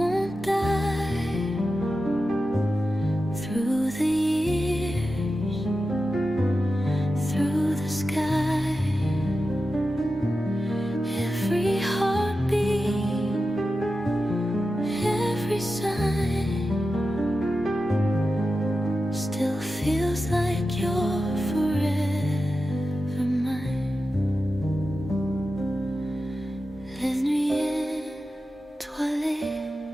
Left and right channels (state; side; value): normal; both; correlation 0.92